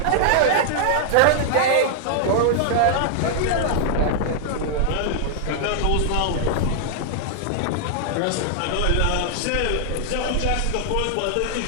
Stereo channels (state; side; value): different; both; correlation -0.01